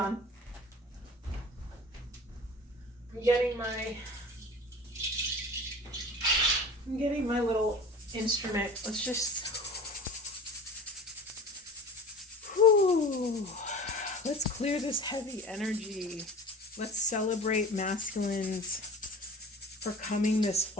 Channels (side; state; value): both; normal; correlation 0.39